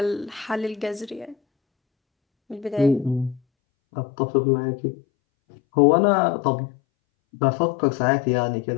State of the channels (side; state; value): right; drops out; at 3.4 s